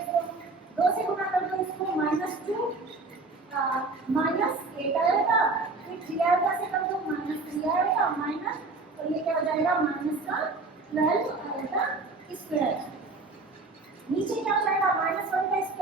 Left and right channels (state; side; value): quieter; left; 3.6 dB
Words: इसको 2 से गुना कर दो, इसको -2 -8 आएगा, फिर 3 आएगा से कर दो -3 आएगा माइनस, और ये क्या हो जाएगा -12 आएगा स्क्वायर। नीचे क्या हो जाएगा -1 का